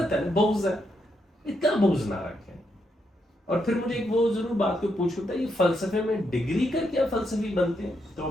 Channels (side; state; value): both; normal; correlation 0.80